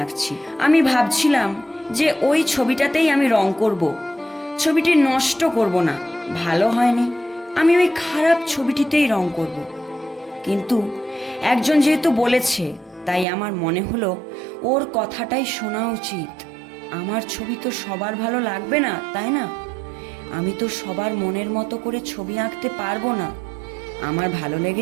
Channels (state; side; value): drops out; left; at 13.2 s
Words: আঁকছি। আমি ভাবছিলাম যে ওই ছবিটাতেই আমি রং করব, ছবিটি নষ্ট করব না। ভালো হয়নি, আমি ওই খারাপ ছবিটিতেই রং করব। কিন্তু একজন যেহেতু বলেছে, তাই আমার মনে হলো ওর কথাটাই শোনা উচিত। আমার ছবি তো সবার ভালো লাগবে না, তাই না? আমি তো সবার মনের মতো করে ছবি আঁকতে পারবো না। আমার ভালো